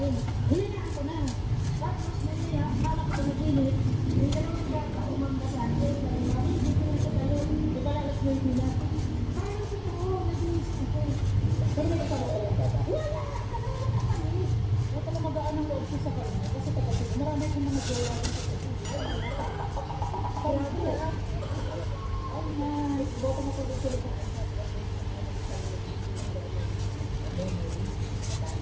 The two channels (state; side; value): identical; both; correlation 1.00